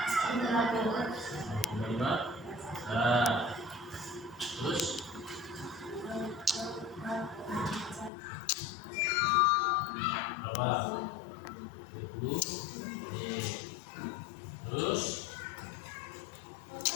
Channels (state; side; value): drops out; right; at 8.1 s